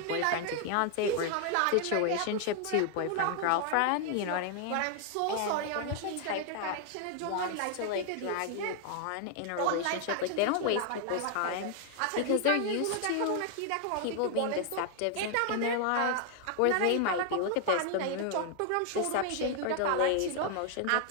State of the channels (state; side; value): different; both; correlation 0.00